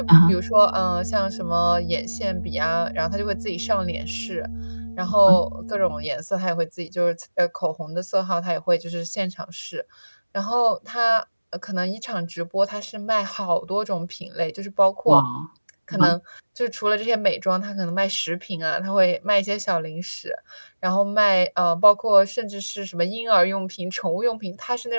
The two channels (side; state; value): both; inverted; correlation -1.00